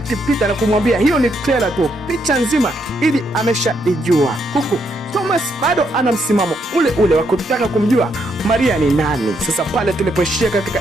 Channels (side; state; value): both; normal; correlation 0.76